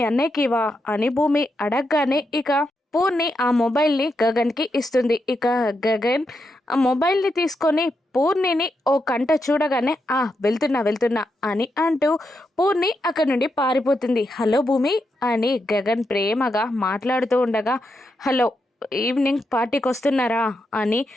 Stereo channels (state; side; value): normal; both; correlation 0.84